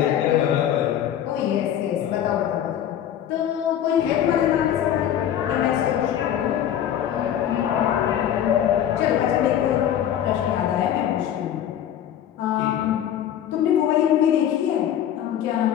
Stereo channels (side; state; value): right; quieter; 10.4 dB